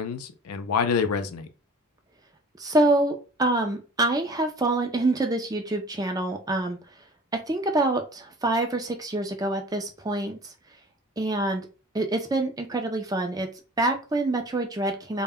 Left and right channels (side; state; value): both; normal; correlation 0.44